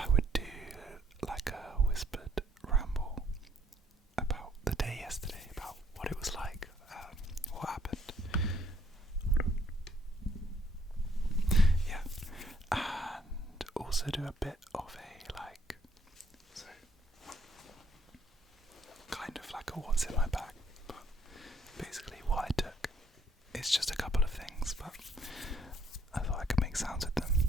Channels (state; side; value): normal; both; correlation 0.66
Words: would do like a whispered ramble about the day yesterday, about what it was like, what happened. Yeah, and also do a bit of a kind of like a what's in my bag, but basically what I took. It's just a couple of things, but I thought I could make sounds with them